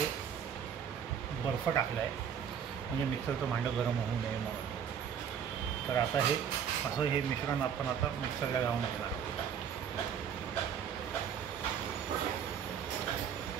बर्फ टाकला आहे म्हणजे मिक्सरचं भांडं गरम होऊ नये म्हणून. तर आता हे मिश्रण आपण आता मिक्सरला लावून घेणार आहोत.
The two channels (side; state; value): left; quieter; 8.0 dB